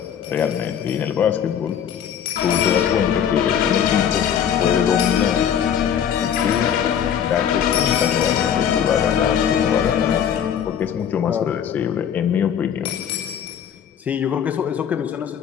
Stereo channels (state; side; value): quieter; right; 8.8 dB